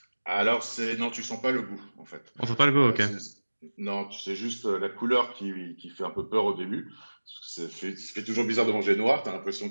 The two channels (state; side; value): inverted; both; correlation -1.00